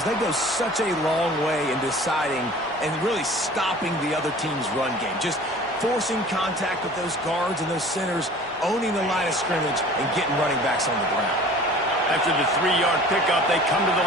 they go such a long way in deciding and really stopping the other team's run game. Just forcing contact with those guards and those centers, owning the line of scrimmage, and getting running backs on the ground. After the 3-yard pickup, they come to the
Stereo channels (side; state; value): both; normal; correlation 0.45